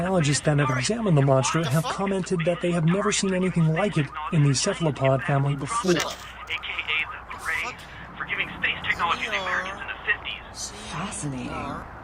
that have examined the monster have commented that they have never seen anything like it in the cephalopod family before. AKA the parade for giving space technology to the Americans in the 50s. Fascinating.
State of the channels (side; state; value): both; identical; correlation 1.00